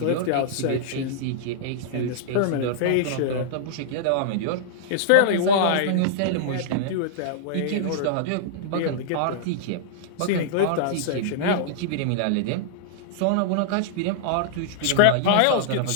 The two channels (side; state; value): both; different; correlation -0.02